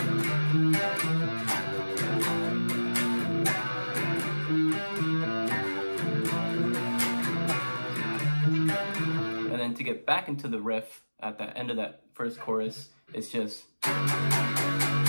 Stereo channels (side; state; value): both; inverted; correlation -1.00